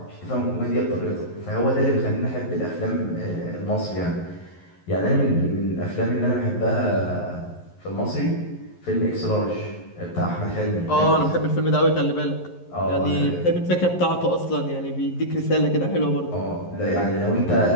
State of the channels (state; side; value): late; right; 11 ms